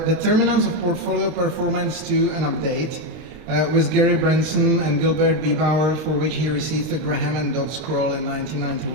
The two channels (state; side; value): late; left; 32 ms